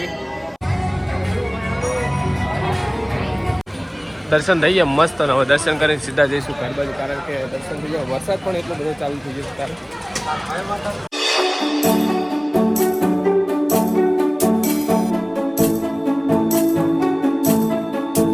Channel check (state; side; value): identical; both; correlation 1.00